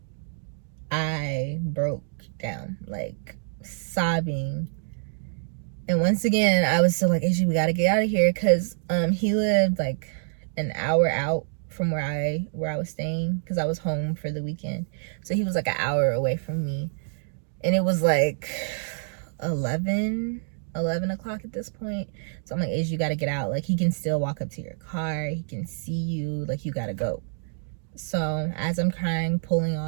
I broke down, like, sobbing. And once again, I was still like, Izzy, we gotta get out of here, because he lived like an hour out from where I was staying, because I was home for the weekend. So he was like an hour away from me. And it was like 11 o'clock at this point. So I'm like, Izzy, you gotta get out. Like, he can still walk up to your car. He can see you. Like, you gotta go. So as I'm crying, pulling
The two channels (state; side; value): silent; left; digital silence